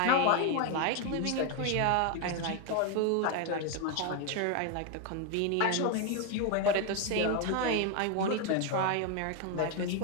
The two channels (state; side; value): different; both; correlation 0.01